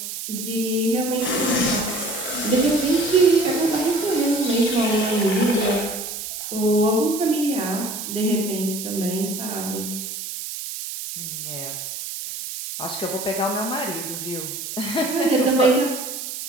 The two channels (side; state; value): right; noise; hiss, 7 dB below the sound